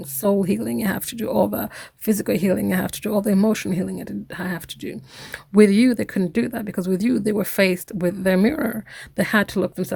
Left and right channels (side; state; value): both; identical; correlation 1.00